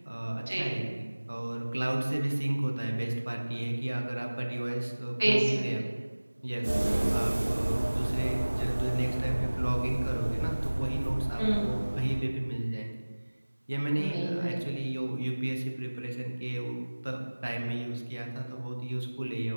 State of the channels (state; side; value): inverted; both; correlation -1.00